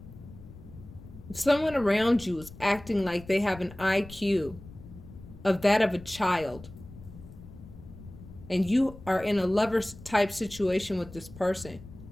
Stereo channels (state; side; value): noise; left; rumble, 17 dB below the sound